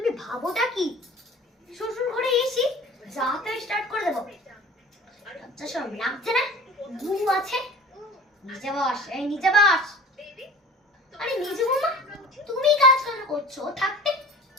ভাবোটা কি? শ্বশুর ঘরে এসি যাতে স্টার্ট করে দেবো। লজ্জা শরম লাগছে না? বউ আছে। নিচে বস, এই নিচে বস। আরে নিচে বৌমা, তুমি কাজ কেন করছো? থাকতে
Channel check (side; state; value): both; normal; correlation 0.42